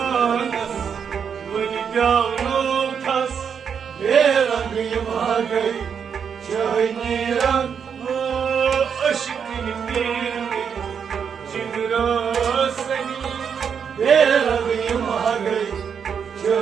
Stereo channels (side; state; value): left; quieter; 7.1 dB